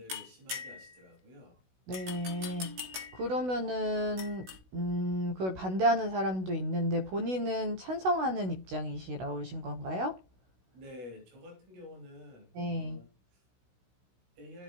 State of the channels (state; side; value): late; left; 16 ms